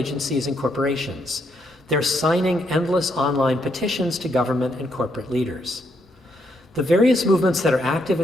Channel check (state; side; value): normal; both; correlation 0.75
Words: and corporations. They're signing endless online petitions to government and corporate leaders. The various movements that are active